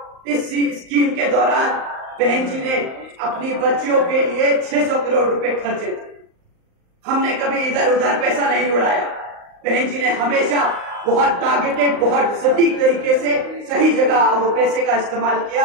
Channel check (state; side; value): late; left; 38 ms